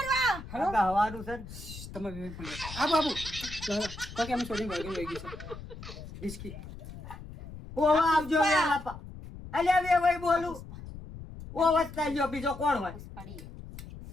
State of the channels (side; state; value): left; noise; rumble, 13 dB below the sound